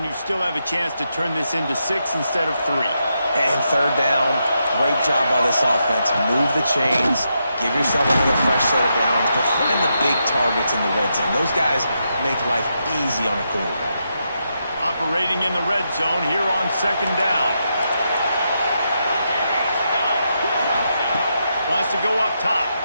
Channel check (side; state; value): both; inverted; correlation -0.83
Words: you still have a chance to turn this into 6 instead of 3. And third down, great job by this offense. Move the chains, give yourself another fresh set of downs, but find the big targets in the red zone. Those guys make life easy on a quarterback. Operating in the red zone here on second down. Wants to go up top.